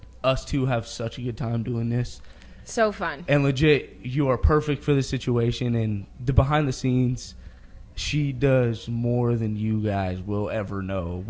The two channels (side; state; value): both; identical; correlation 1.00